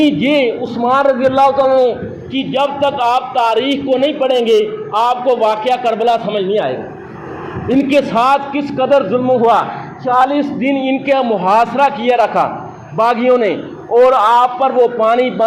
یہ عثمان رضی اللہ عنہ کی جب تک آپ تاریخ کو نہیں پڑھیں گے آپ کو واقعہ کربلا سمجھ نہیں آئے گا۔ ان کے ساتھ کس قدر ظلم ہوا، 40 دن ان کا محاصرہ کیا رکھا باغیوں نے اور آپ پر وہ پانی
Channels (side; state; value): both; identical; correlation 1.00